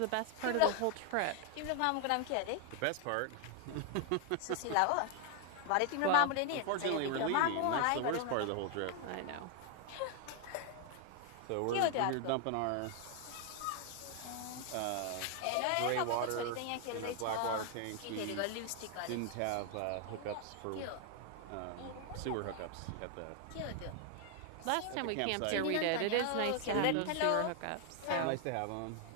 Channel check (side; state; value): both; different; correlation 0.00